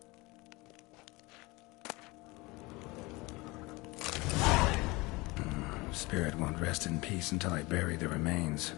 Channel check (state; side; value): quieter; right; 23.5 dB